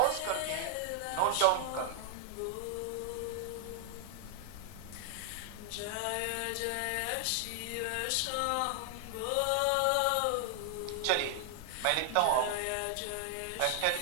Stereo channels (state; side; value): different; both; correlation 0.00